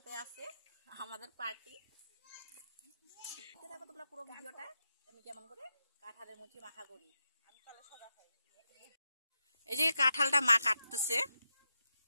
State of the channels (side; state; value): both; inverted; correlation -0.88